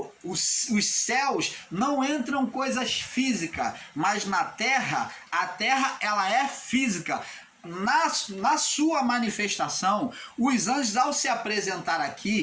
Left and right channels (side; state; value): both; identical; correlation 1.00